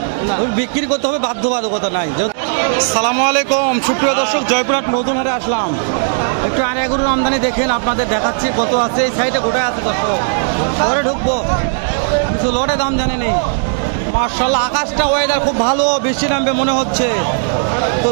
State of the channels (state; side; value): silent; left; digital silence